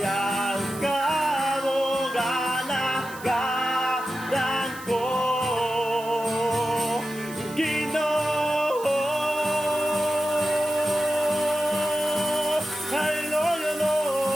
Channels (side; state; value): right; noise; hiss, 17 dB below the sound